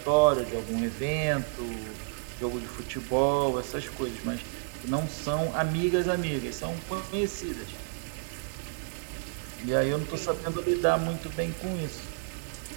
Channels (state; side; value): silent; left; digital silence